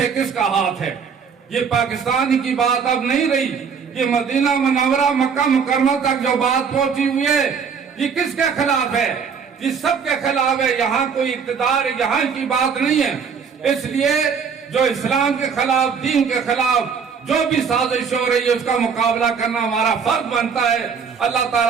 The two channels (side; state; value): left; quieter; 6.3 dB